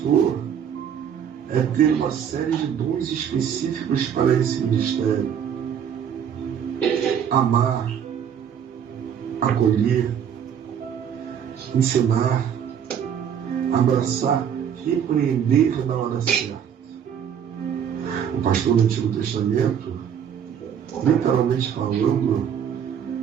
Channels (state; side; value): quieter; left; 8.5 dB